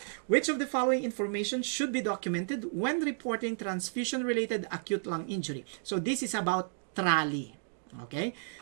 Which of the following information should be documented when reporting transfusion-related acute lung injury? So this is about TRALI. Okay?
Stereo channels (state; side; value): silent; left; digital silence